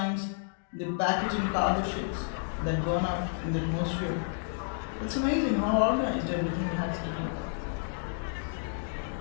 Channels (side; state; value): right; silent; digital silence